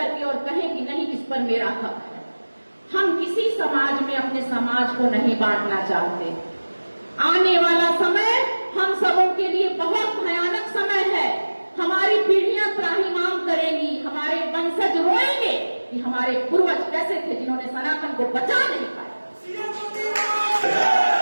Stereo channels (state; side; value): inverted; both; correlation -1.00